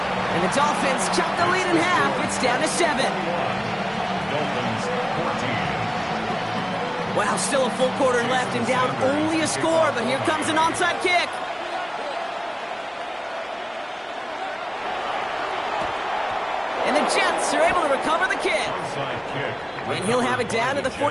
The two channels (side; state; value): both; identical; correlation 1.00